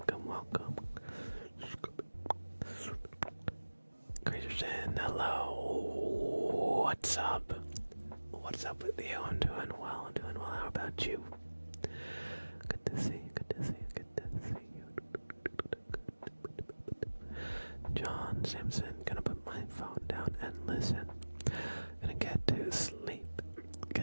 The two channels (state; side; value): inverted; both; correlation -1.00